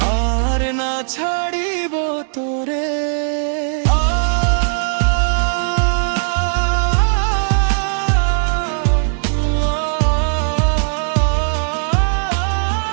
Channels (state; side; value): silent; left; digital silence